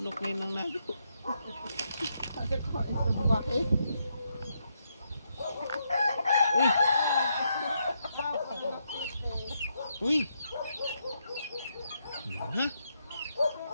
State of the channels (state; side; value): inverted; both; correlation -0.79